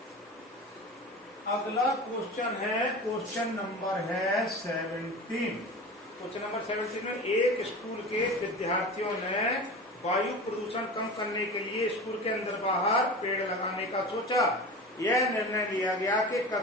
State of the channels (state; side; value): normal; both; correlation 0.32